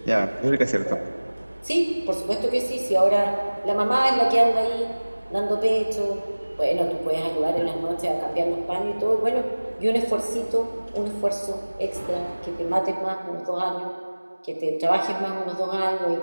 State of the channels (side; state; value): both; inverted; correlation -1.00